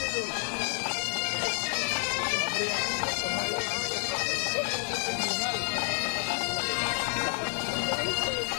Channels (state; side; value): silent; right; digital silence